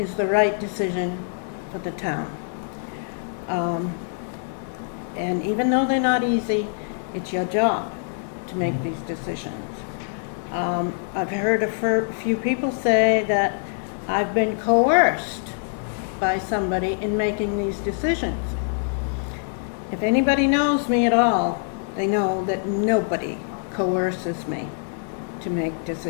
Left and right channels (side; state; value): right; silent; 62 dB below the other